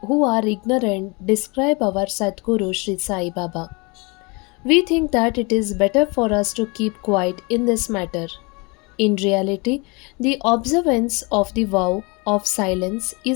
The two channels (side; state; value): right; quieter; 28.6 dB